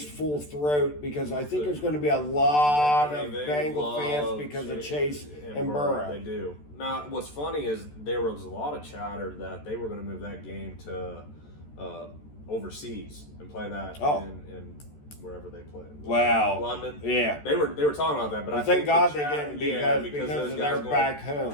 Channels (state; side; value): late; right; 14 ms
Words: full throat, because I think there's going to be a lot of Bengal fans because of Chase and Burrow. They do. Now, what's funny is there was a lot of chatter that they were going to move that game to overseas and play that in wherever they play. Wow. London. Yeah. They were talking about that, but I thank think God they didn't because they're back